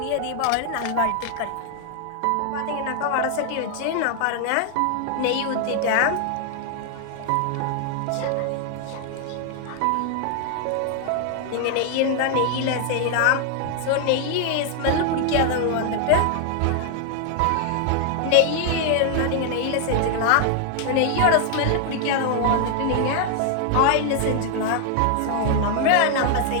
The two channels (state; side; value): different; both; correlation 0.00